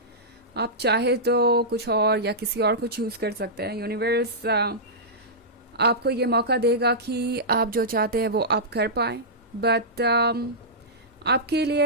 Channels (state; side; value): normal; both; correlation -0.14